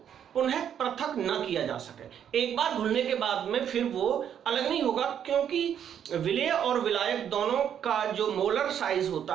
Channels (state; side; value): quieter; left; 9.0 dB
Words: पुनः पृथक न किया जा सके। एक बार घुलने के बाद में फिर वो अलग नहीं होगा, क्योंकि विलेय और विलायक दोनों का जो मोलर साइज